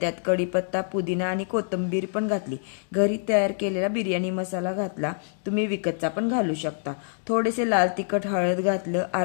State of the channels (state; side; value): silent; right; digital silence